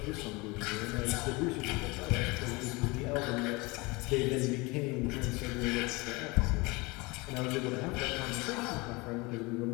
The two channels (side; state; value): right; quieter; 25.2 dB